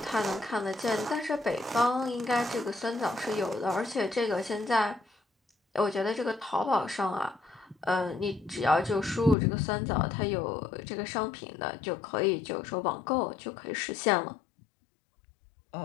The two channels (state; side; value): drops out; right; at 9.3 s